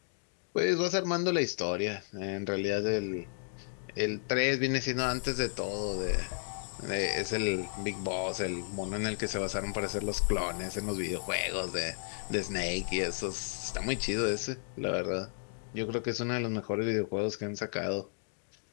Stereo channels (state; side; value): silent; right; digital silence